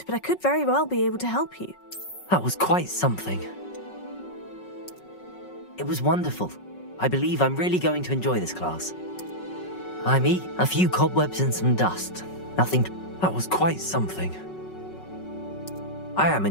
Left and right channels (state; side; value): late; right; 5.4 ms